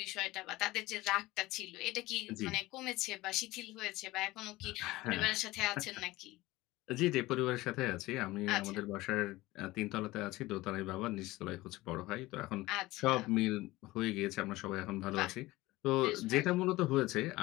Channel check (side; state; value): right; quieter; 19.1 dB